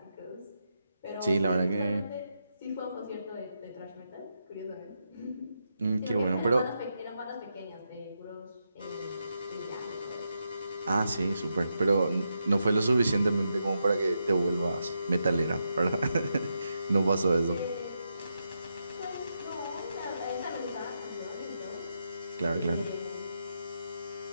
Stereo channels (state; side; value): inverted; both; correlation -0.84